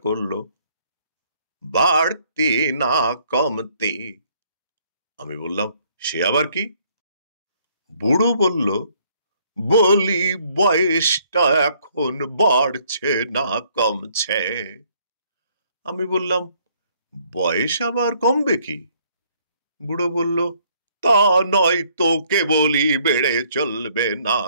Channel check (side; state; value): both; inverted; correlation -0.65